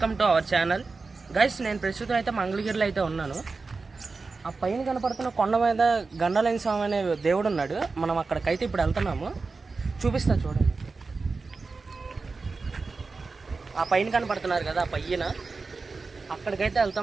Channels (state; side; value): quieter; left; 4.1 dB